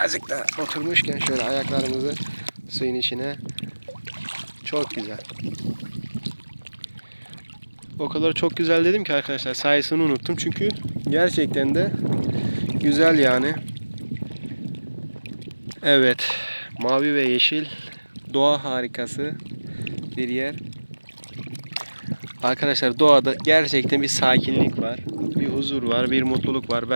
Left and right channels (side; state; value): both; inverted; correlation -1.00